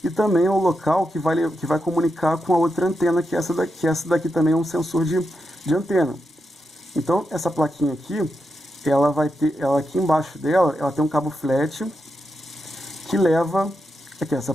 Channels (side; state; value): both; normal; correlation 0.86